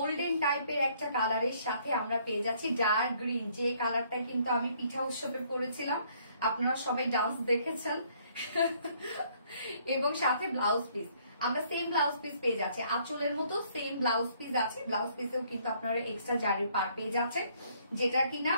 টাইপের একটা কালারের সাথে আমরা পেয়ে যাচ্ছি ডার্ক গ্রিন, যে কালারটা কিন্তু আমি পিঠা উৎসবে পরেছিলাম, আপনারা সবাই ডান্স দেখেছেন এবং সাথে ব্লাউজ পিস আমরা সেম ব্লাউজ পিস পেয়ে যাচ্ছি, আঁচলের মতো সেম ব্লাউজ পিস আছে। ব্লাউজ পিসেও কিন্তু আপনারা এক্সট্রা জারির পার পেয়ে যাচ্ছেন, যেটা কিনা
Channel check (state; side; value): inverted; both; correlation -0.64